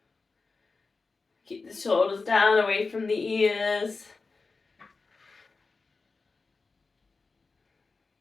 Keep the shoulders down, away from the ears.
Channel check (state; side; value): quieter; right; 4.1 dB